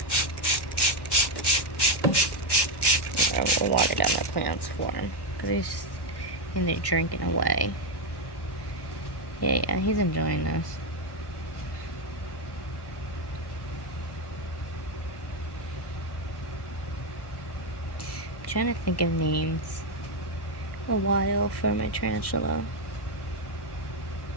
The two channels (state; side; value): late; right; 1.1 ms